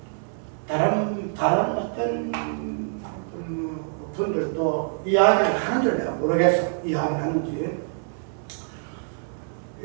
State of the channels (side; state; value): left; silent; 61 dB below the other